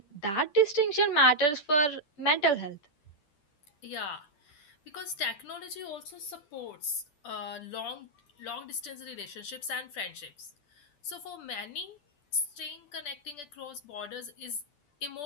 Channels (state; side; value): late; right; 10 ms